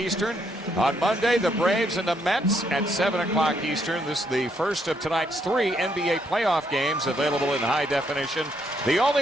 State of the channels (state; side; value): normal; both; correlation 0.74